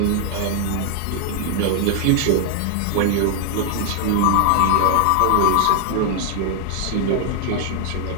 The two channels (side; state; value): both; different; correlation 0.00